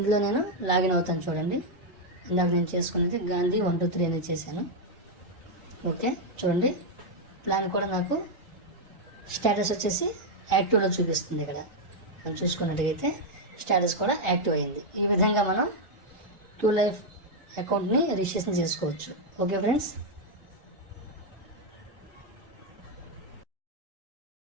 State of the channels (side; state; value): both; normal; correlation 0.00